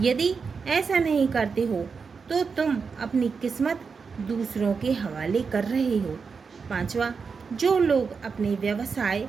ऐसा नहीं करते हो तो तुम अपनी किस्मत दूसरों के हवाले कर रहे हो। पांचवा, जो लोग अपने व्यवसाय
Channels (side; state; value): left; quieter; 5.3 dB